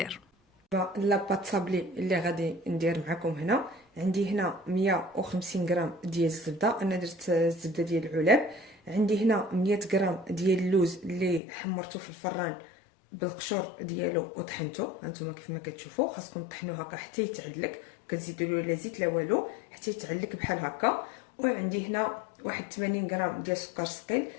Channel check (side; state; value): right; drops out; at 11.4 s